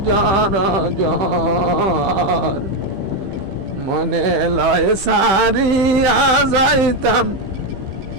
জ্বর জ্বর মনে লয় সারিয়া যাইতাম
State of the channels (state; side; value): late; left; 15 ms